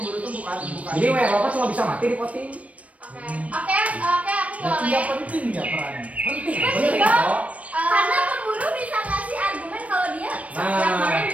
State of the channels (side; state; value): left; late; 0.066 ms